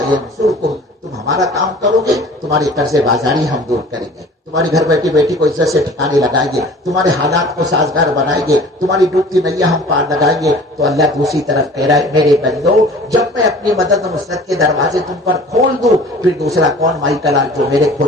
ینصرکم، تم ہمارا کام کرو گے تمہاری قرض بازاری ہم دور کریں گے، تمہاری گھر بیٹھی بیٹی کو عزت سے ٹھکانے لگائیں گے، تمہارے حالات کو سازگار بنائیں گے، تمہاری ڈوبتی نیا ہم پار لگائیں گے۔ تو اللہ دوسری طرف کہہ رہا ہے میرے بندو، جب میں اپنی مدد و نصرت کے دروازے تم پر کھول دوں، پھر دوسرا کون مائی کلال جو میرے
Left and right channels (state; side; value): normal; both; correlation 0.46